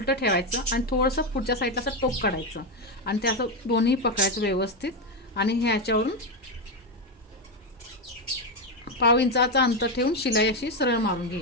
ठेवायचं आणि थोडंसं पुढच्या साईडला असं टोक काढायचं आणि ते असं दोन्ही पकडायचं व्यवस्थित आणि ह्याच्यावरून पाव इंचाचा अंतर ठेवून शिलाई अशी सरळ मारून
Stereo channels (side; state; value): both; normal; correlation 0.09